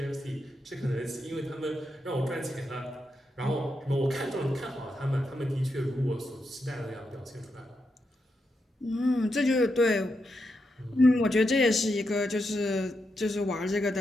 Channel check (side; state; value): both; normal; correlation 0.84